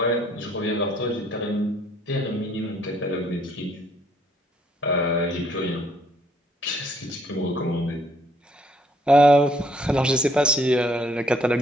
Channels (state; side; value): normal; both; correlation 0.66